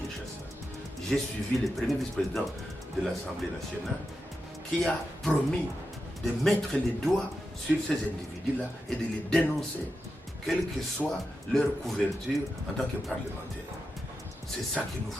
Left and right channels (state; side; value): normal; both; correlation 0.89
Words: J'ai suivi le premier vice-président de l'Assemblée nationale qui a promis de mettre les doigts sur ces individus-là et de les dénoncer, quelle que soit leur couverture en tant que parlementaire. C'est ça que nous